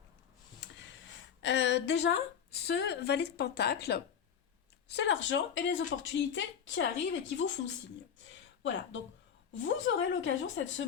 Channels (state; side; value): quieter; right; 8.0 dB